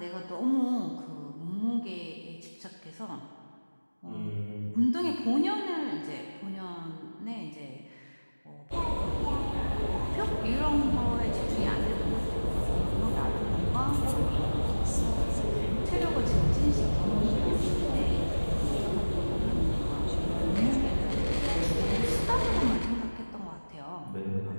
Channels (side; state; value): both; inverted; correlation -1.00